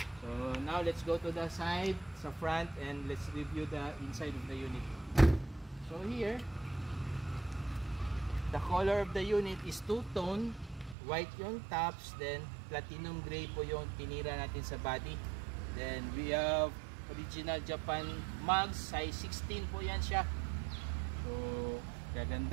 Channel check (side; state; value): left; drops out; at 11.0 s